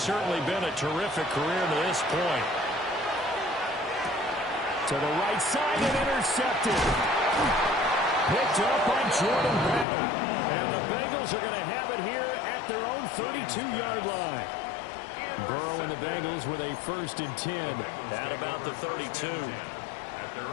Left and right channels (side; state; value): right; drops out; at 9.9 s